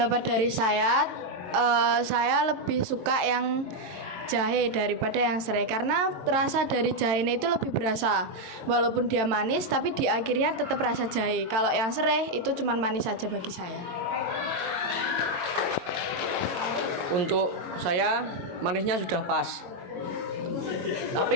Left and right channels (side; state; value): left; late; 22 ms